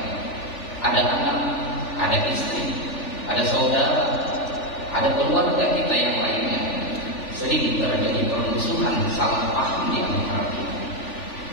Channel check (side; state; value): right; late; 3.4 ms